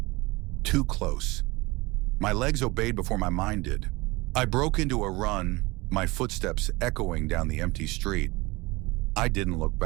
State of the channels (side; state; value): left; quieter; 23.0 dB